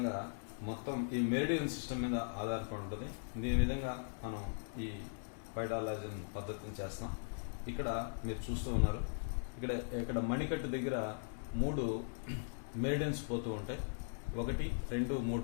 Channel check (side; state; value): right; silent; digital silence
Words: మొత్తం ఈ మెరిడియన్ సిస్టమ్ మీద ఆధారపడి ఉంటుంది. దీని విధంగా మనం ఈ పైడా లాజిన్ పద్ధతిని చేస్తాం. ఇక్కడ మీరు చూస్తూ ఉన్నారు, ఇక్కడ మణికట్టు దగ్గర 3 మెరిడియన్స్ పోతూ ఉంటాయి. 1, 2,